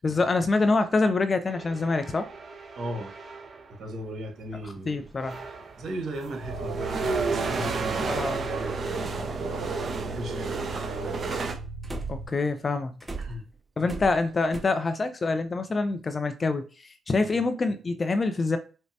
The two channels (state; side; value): normal; both; correlation 0.85